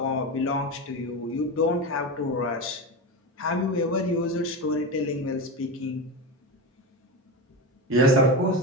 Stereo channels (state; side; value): normal; both; correlation 0.20